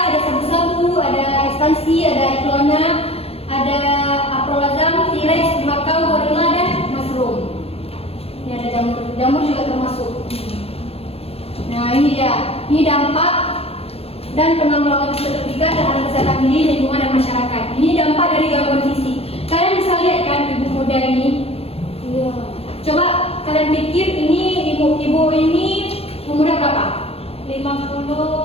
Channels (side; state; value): right; late; 0.29 ms